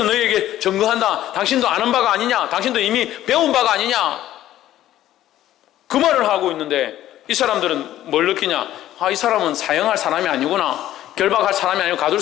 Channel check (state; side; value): quieter; right; 13.3 dB